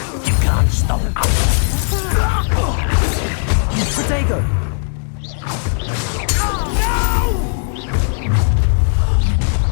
You can't stop us! Dago!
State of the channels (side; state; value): right; silent; 68 dB below the other